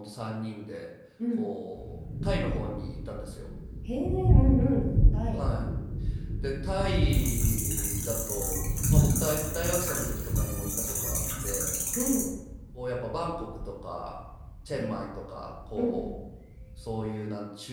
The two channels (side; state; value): both; identical; correlation 1.00